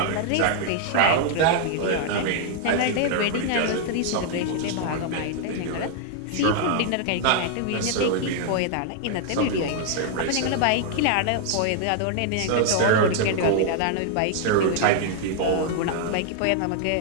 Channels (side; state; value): both; different; correlation 0.00